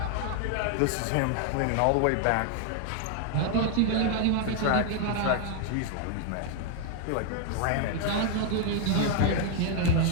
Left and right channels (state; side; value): different; both; correlation 0.00